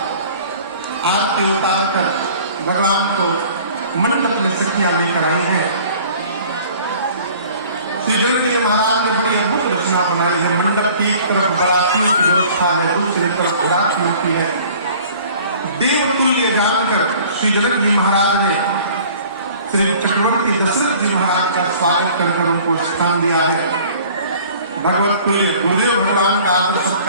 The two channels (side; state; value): both; inverted; correlation -0.49